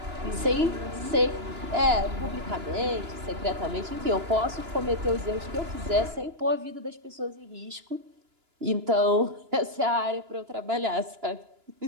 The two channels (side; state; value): left; late; 2.9 ms